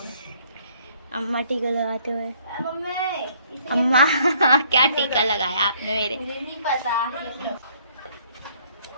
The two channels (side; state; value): both; inverted; correlation -0.63